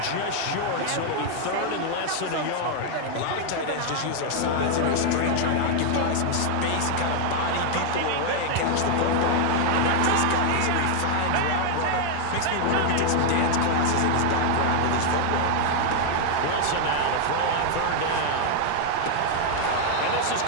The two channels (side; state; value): both; different; correlation 0.00